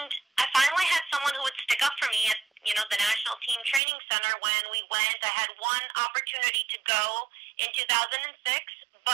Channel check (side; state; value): left; drops out; at 3.8 s